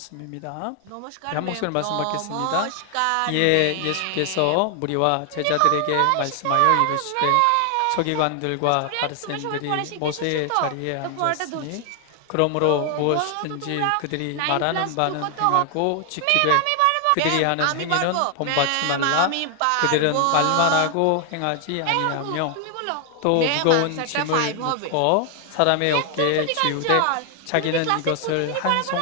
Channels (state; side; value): different; both; correlation 0.00